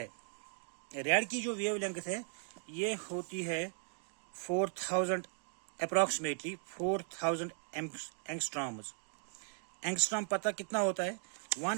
रेड की जो वेव लेंथ है ये होती है 4000 अप्रोक्सीमेटली 4000 एंगस्ट्रॉम्स। एंगस्ट्रॉम पता कितना होता है?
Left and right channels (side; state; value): left; silent; 53 dB below the other